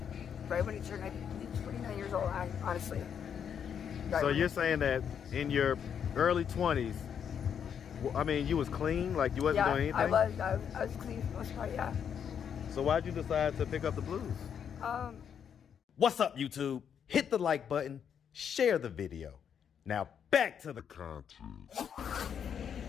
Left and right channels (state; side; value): quieter; right; 8.0 dB